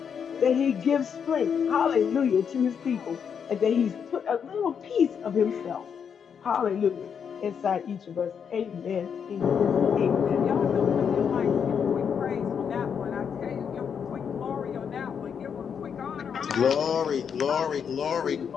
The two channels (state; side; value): quieter; right; 7.2 dB